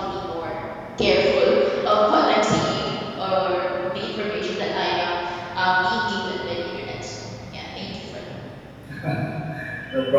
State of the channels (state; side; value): identical; both; correlation 1.00